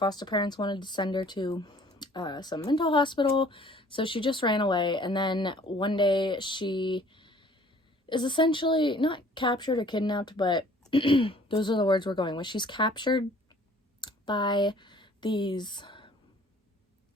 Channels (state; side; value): normal; both; correlation 0.54